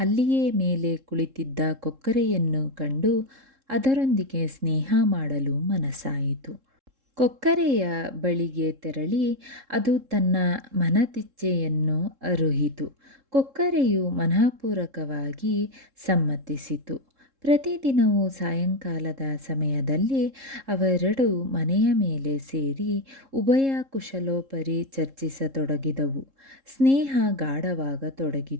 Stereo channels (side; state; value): left; late; 3.7 ms